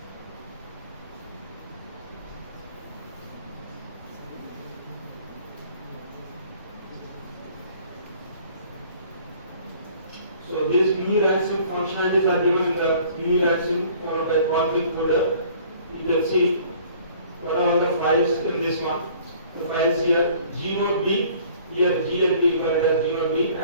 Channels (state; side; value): inverted; both; correlation -0.54